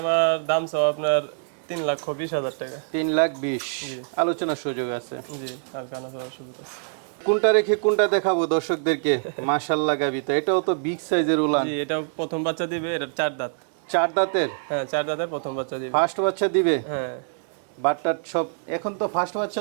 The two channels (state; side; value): silent; left; digital silence